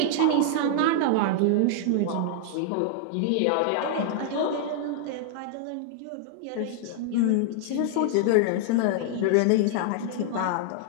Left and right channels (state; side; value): different; both; correlation -0.01